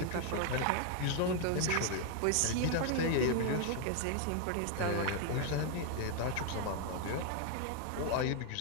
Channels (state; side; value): different; both; correlation 0.00